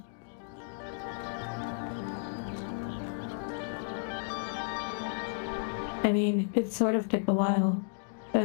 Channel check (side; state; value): right; silent; digital silence